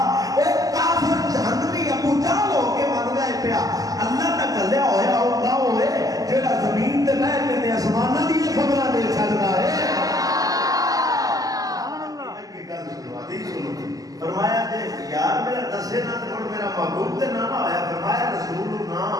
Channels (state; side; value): late; left; 0.17 ms